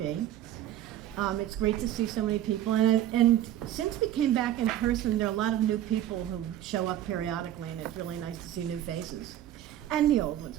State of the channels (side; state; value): left; quieter; 12.2 dB